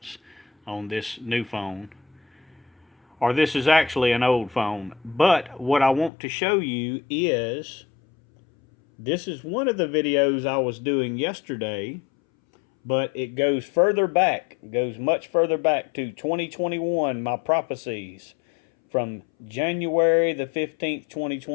on this new phone. Or this is actually an old phone. But what I want to show you is this is one of the videos I was doing yesterday, but it goes further back. It goes much further back to 2021, my prophecies from January the 15th,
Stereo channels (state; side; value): drops out; right; at 6.1 s